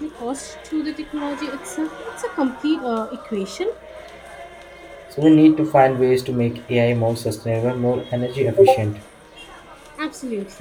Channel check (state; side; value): identical; both; correlation 1.00